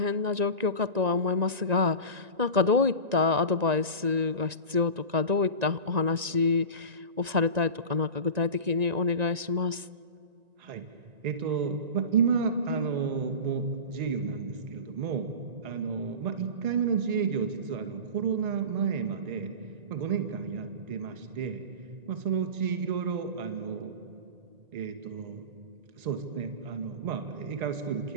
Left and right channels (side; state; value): left; late; 1.9 ms